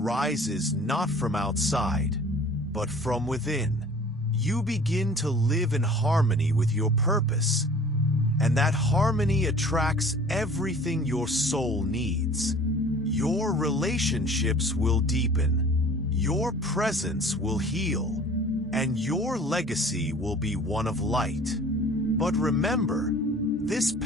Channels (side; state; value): both; normal; correlation 0.47